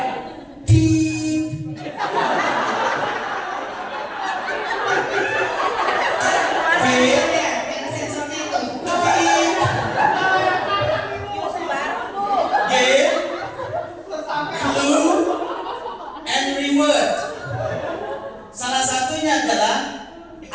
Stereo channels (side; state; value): both; identical; correlation 1.00